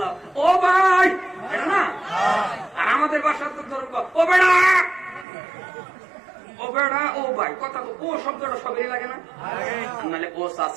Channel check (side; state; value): left; drops out; at 5.2 s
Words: ও ভাই এটা না, আর আমাদের বাসার তো ধরো ও বেড়া, ও বেড়া, ও ভাই, কথা তো ও শব্দটা সবেরই লাগে না? নাহলে ও